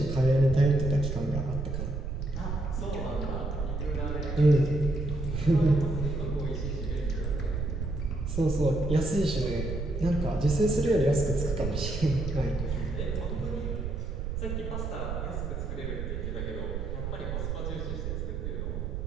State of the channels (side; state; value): right; noise; rumble, 3 dB below the sound